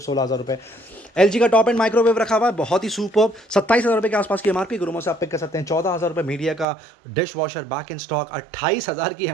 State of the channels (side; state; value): left; drops out; at 6.7 s